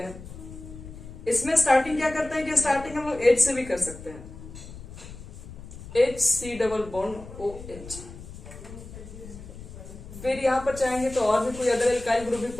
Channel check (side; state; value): left; noise; rumble, 14 dB below the sound